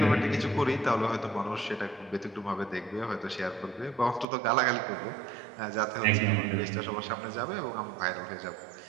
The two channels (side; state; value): left; drops out; at 4.2 s